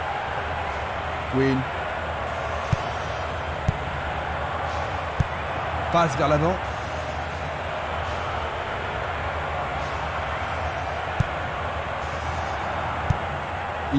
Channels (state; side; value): identical; both; correlation 1.00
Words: Quinn. Passe vers l'avant.